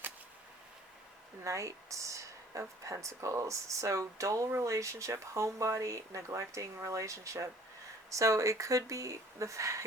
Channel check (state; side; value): normal; both; correlation 0.53